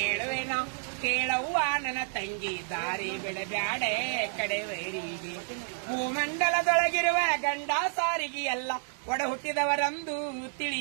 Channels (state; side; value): silent; left; digital silence